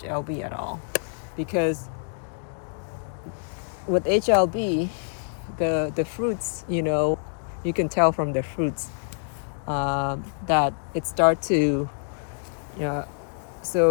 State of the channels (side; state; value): right; silent; digital silence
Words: at all, because with HLB, the fruits, you can tell from the fruits that it start to,